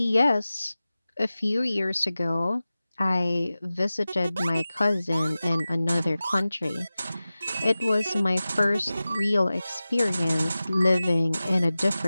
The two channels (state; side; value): inverted; both; correlation -0.96